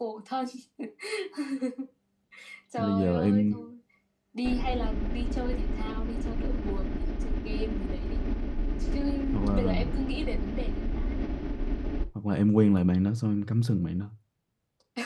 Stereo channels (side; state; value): both; identical; correlation 1.00